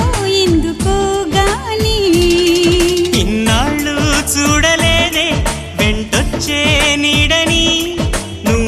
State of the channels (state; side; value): identical; both; correlation 1.00